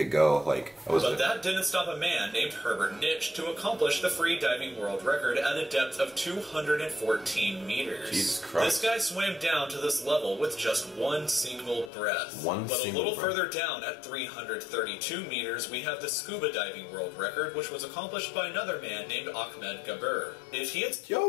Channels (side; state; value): right; drops out; at 11.9 s